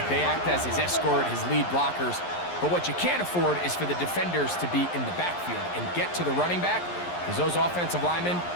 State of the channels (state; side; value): late; right; 11 ms